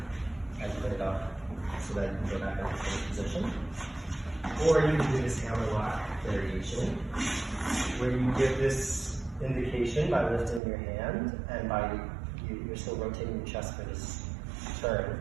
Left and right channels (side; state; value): left; drops out; at 10.6 s